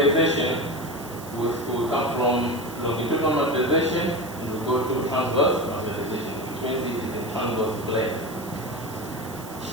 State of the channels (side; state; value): right; noise; hiss, 17 dB below the sound